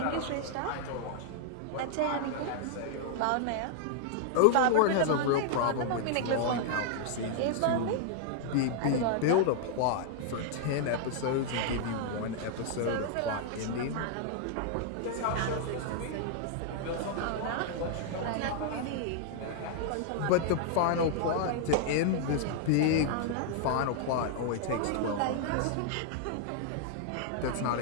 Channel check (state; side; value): different; both; correlation -0.01